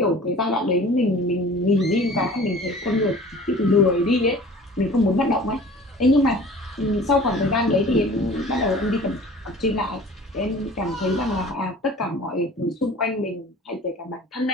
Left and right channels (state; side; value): normal; both; correlation 0.45